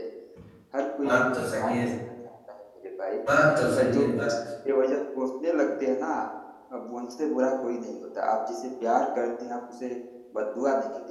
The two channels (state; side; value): identical; both; correlation 1.00